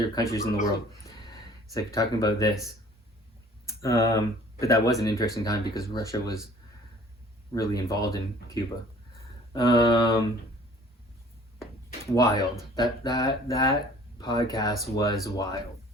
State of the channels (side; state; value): both; normal; correlation 0.51